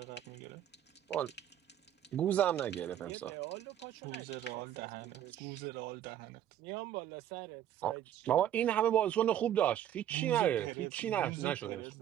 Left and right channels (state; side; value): quieter; left; 10.9 dB